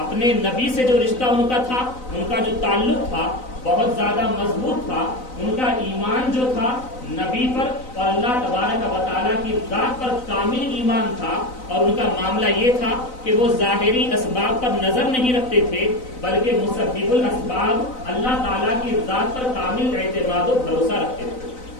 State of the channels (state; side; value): late; right; 4.0 ms